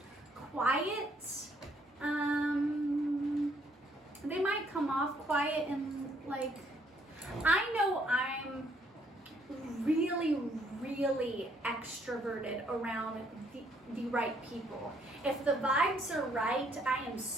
Quiet. They might come off quiet and like, I know I'm really, really extroverted around the right people. If the vibes are right, I am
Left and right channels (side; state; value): both; normal; correlation 0.68